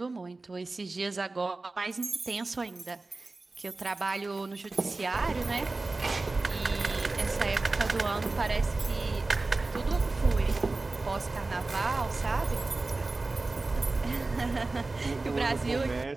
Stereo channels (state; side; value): quieter; left; 3.4 dB